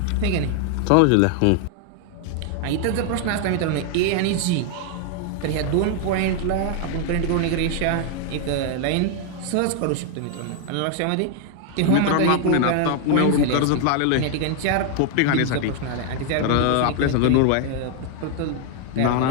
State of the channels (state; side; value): different; both; correlation 0.00